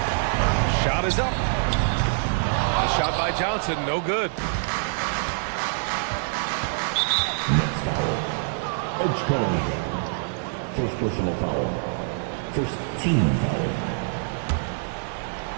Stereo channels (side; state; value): left; silent; digital silence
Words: Shot is up. The shot by Johnson, no good. Nets foul. Edge code. First personal foul. First team foul.